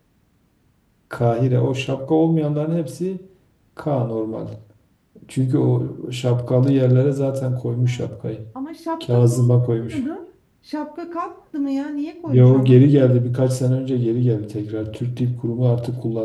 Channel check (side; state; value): both; identical; correlation 1.00